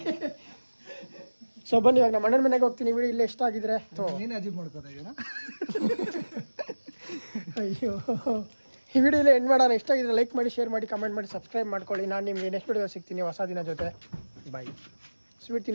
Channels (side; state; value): both; inverted; correlation -1.00